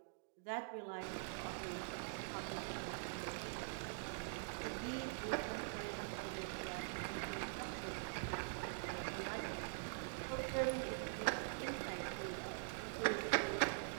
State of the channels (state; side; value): silent; left; digital silence